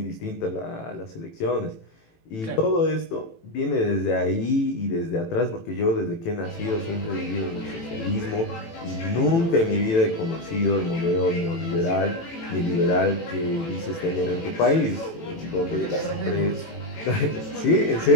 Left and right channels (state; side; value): late; right; 18 ms